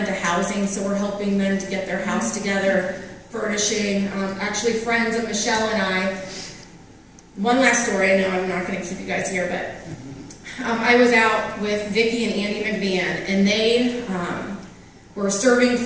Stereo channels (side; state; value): both; identical; correlation 1.00